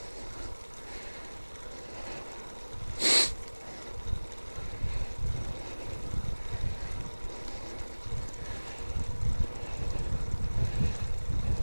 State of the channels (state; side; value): inverted; both; correlation -1.00